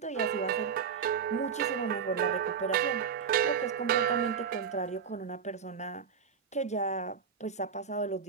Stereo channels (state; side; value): quieter; left; 6.7 dB